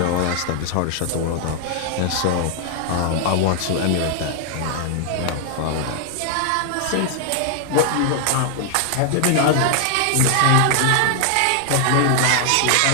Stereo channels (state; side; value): different; both; correlation 0.00